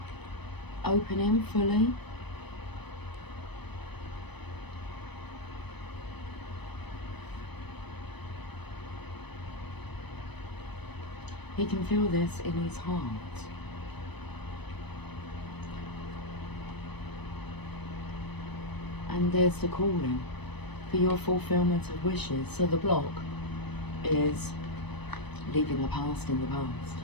opening fully. He can feel this in his heart. And there's the calling for your fulfillment of wishes. So the block is leaving the past in the past.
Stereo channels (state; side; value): late; right; 0.99 ms